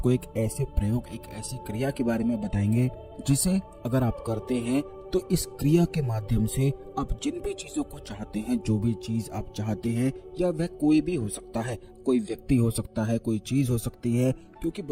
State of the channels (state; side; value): identical; both; correlation 1.00